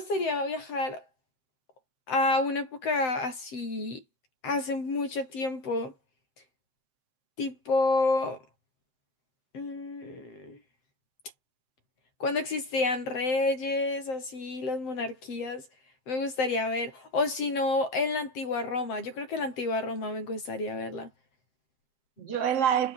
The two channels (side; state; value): right; late; 7.7 ms